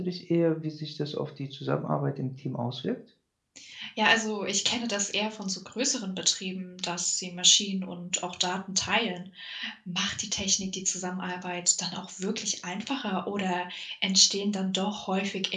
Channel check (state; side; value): identical; both; correlation 1.00